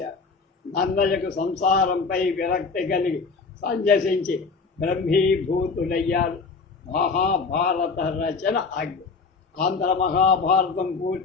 నన్నయ్యకు సంసారంపై విరక్తి కలిగి సంజసించి బ్రహ్మీభూతుడయ్యారు. మహాభారత రచన ఆజ్ఞ. ఆంధ్ర మహాభారతం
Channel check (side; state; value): right; quieter; 4.6 dB